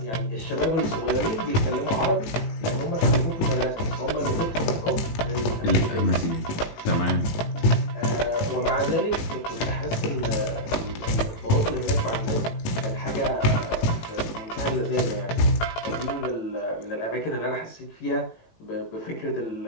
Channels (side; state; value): right; late; 18 ms